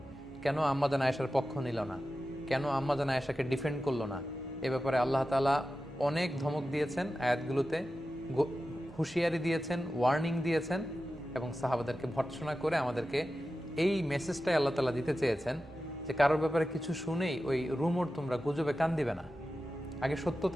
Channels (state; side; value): normal; both; correlation 0.93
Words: কেন আম্মা জান আয়েশার পক্ষ নিল না, কেন আম্মা জান আয়েশাকে ডিফেন্ড করলো না, এ ব্যাপারে আল্লাহ তাআলা অনেক ধমক দিয়েছেন আয়াতগুলোতে, হুঁশিয়ারি দিয়েছেন, ওয়ার্নিং দিয়েছেন এবং সাহাবাদেরকে ভর্ৎসনা করে আমাদেরকে এই মেসেজটাই আল্লাহ তাআলা দিতে চেয়েছেন যে কারোর ব্যাপারে কিছু শুনেই ওই রুমর তোমরা গুজবে কান দিবে না, আগে